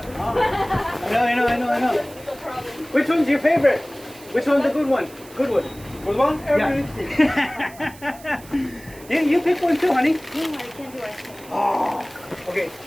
I know. Which one's your favorite? Which one's the good one? Good one. Good one? Everything. Yeah. you pick one too, honey. No, I can't do it. Oh. Okay.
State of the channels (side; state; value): right; noise; hiss, 21 dB below the sound